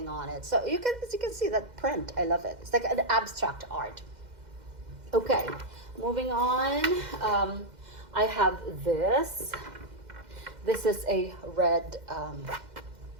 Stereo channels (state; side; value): late; left; 2.0 ms